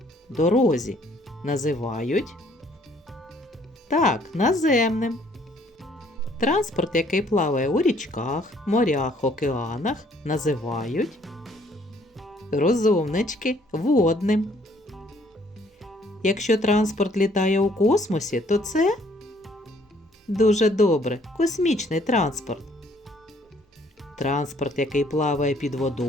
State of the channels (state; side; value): normal; both; correlation 0.62